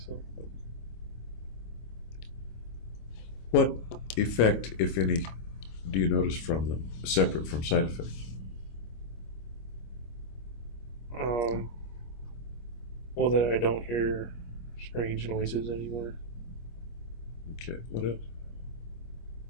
What effect, if any, do you notice from them, separate from side effects? Well, that I don't hear strange noises anymore. Okay, what else?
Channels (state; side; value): late; right; 25 ms